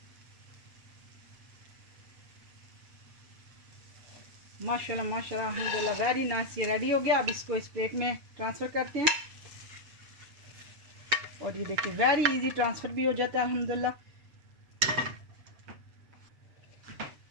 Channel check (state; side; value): late; left; 7.1 ms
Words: माशाल्लाह माशाल्लाह अल्हम्दुलिल्लाह वेरी नाइस, ये रेडी हो गया। अब इसको इस प्लेट में ट्रांसफ़र करते हैं, और ये देखिए वेरी इजी ट्रांसफ़र भी हो जाता है अल्हम्दुलिल्लाह।